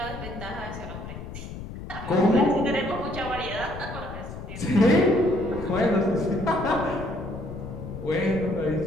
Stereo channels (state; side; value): noise; left; rumble, 10 dB below the sound